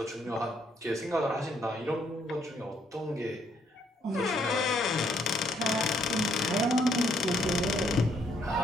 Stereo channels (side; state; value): both; normal; correlation 0.71